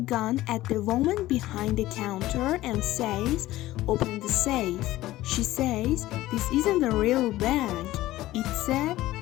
at the woman behind the counter and says, "Open the safe." She says, "This isn't a real bank, it's a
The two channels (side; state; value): right; quieter; 16.1 dB